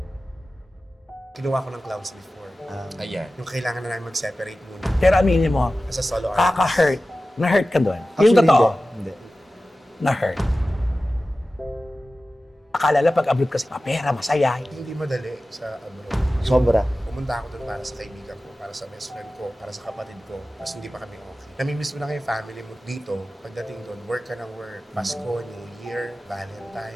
Kinuha ko ng clowns before. Ayan. Yung kailangan na namin mag-separate muna. Pero aminin mo, Sa solo artist. kaka-hurt. Na-hurt ka doon. Yung Actually, totoo, Hindi. na-hurt. Akala lang pag-abroad kasi pera, masaya. Hindi madali sa abroad. Sobra. Pumunta ako doon para sa kaibigan ko, para sa best friend ko, para sa kapatid ko. Tapos hindi pa kami okay. Namimiss mo na kayo family mo dito. Pagdating doon, work ka ng work. Pasko, New Year,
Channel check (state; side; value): normal; both; correlation 0.95